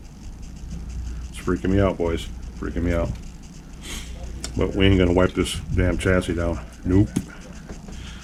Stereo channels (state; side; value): identical; both; correlation 1.00